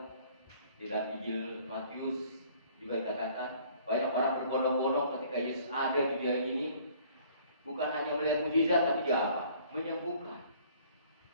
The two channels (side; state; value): both; inverted; correlation -0.56